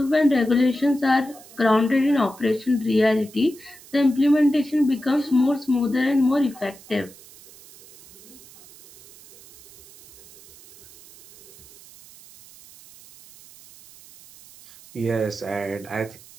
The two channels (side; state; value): right; noise; hiss, 22 dB below the sound